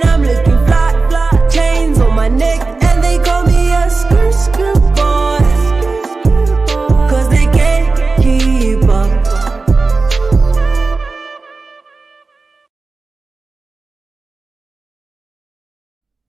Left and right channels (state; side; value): quieter; left; 3.9 dB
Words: I'm looking fly, chains on my neck, and they call me a skirt boy. Cause they can't keep up.